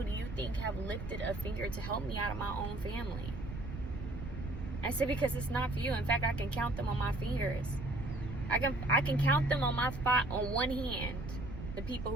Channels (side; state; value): right; noise; rumble, 8 dB below the sound